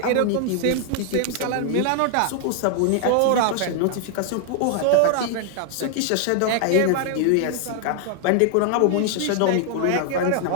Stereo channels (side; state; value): both; different; correlation 0.00